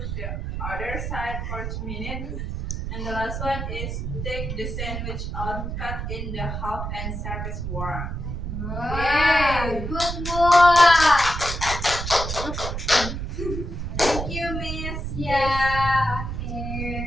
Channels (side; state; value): right; noise; rumble, 4 dB below the sound